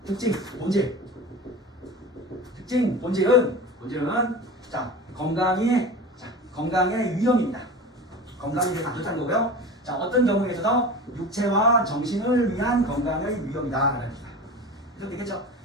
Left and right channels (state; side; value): normal; both; correlation 0.32